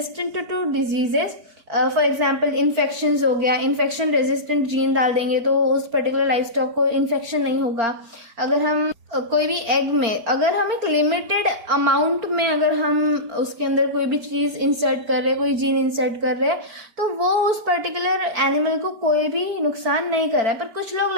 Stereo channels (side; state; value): left; late; 4.4 ms